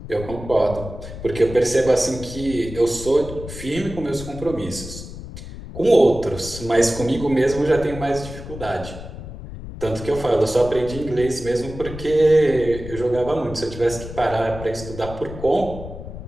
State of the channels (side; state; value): left; noise; rumble, 11 dB below the sound